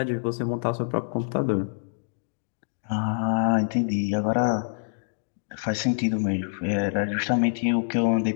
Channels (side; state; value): right; silent; digital silence